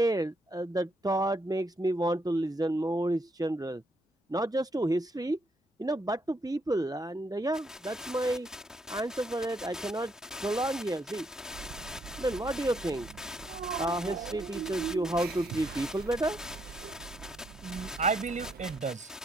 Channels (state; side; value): normal; both; correlation 0.75